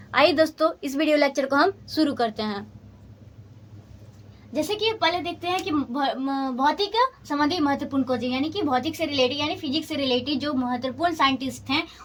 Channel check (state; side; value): identical; both; correlation 1.00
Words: आइए दोस्तों, इस वीडियो लेक्चर को हम शुरू करते हैं। जैसे कि पहले देखते हैं कि भौतिक संबंधी महत्वपूर्ण खोज, यानी कि भौतिक से रिलेटेड यानी फिजिक्स से रिलेटेड जो महत्वपूर्ण साइंटिस्ट हैं